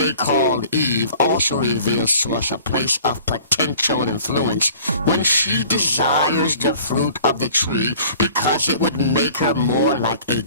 called Eve also reveals to us a place of potential influence when she desires the fruit of the tree because it would make her more like a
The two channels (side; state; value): both; inverted; correlation -0.48